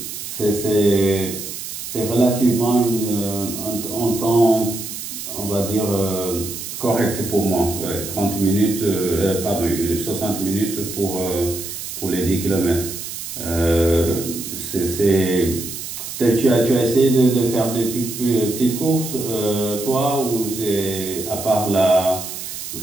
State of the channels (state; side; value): noise; right; hiss, 8 dB below the sound